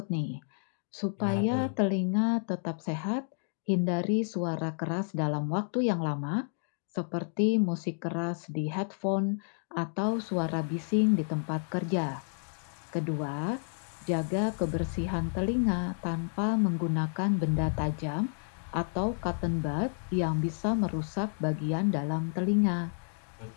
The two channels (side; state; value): right; silent; digital silence